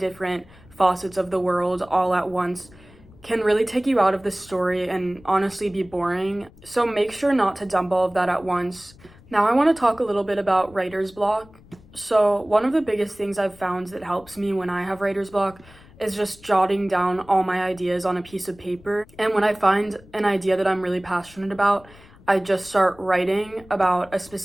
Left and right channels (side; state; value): left; noise; rumble, 24 dB below the sound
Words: facets of the world all at once can really take you out of the story and honestly be boring. So make sure not to dump all of that at once. Now I want to talk a little bit about writer's block. So one of the biggest things I've found that helps me when I have writer's block is just jotting down all my ideas on a piece of paper. And when I find an idea that I'm really passionate about, I just start writing about a